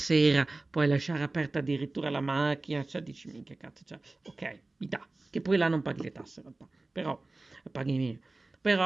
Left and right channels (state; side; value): quieter; left; 3.2 dB